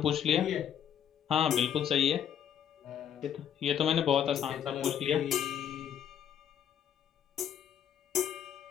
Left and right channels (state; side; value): quieter; right; 9.3 dB